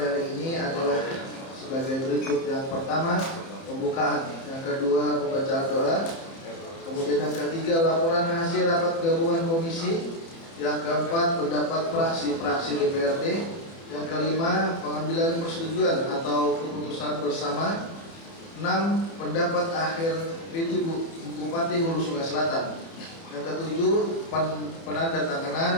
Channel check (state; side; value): late; right; 30 ms